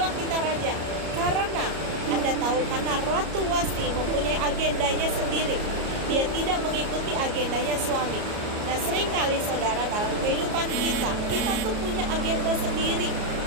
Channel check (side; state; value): left; late; 34 ms